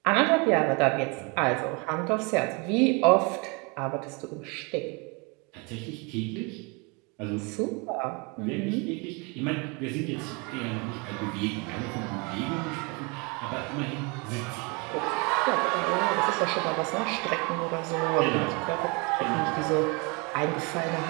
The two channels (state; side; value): quieter; left; 30.3 dB